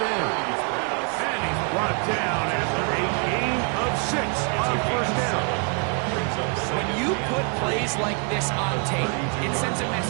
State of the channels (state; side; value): quieter; left; 39.1 dB